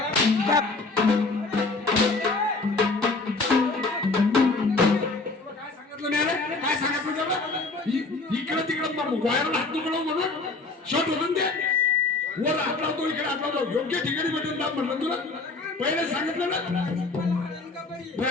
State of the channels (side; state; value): right; quieter; 3.6 dB